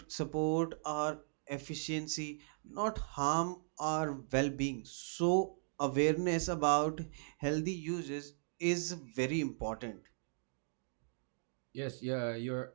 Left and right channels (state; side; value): silent; left; digital silence